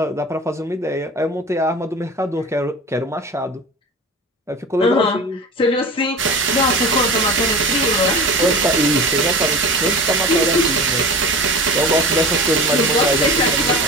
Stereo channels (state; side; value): normal; both; correlation 0.34